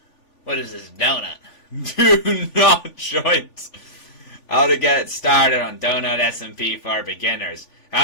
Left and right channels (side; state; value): right; late; 3.5 ms